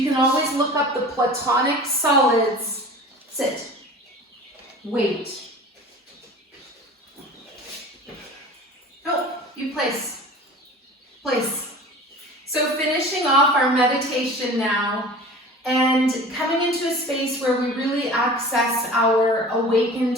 can always look up the platonic solids. Sit. Wait. Oh. You place. So finishing off our meditation now and coming into a space where we really access our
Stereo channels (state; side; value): normal; both; correlation 0.39